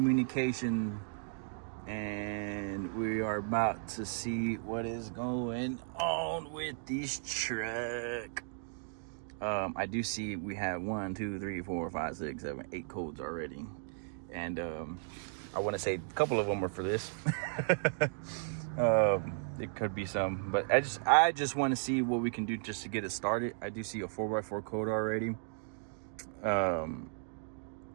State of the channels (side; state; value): left; silent; digital silence